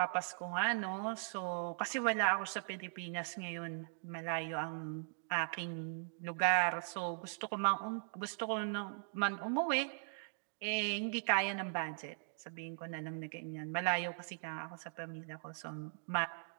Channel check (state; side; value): silent; left; digital silence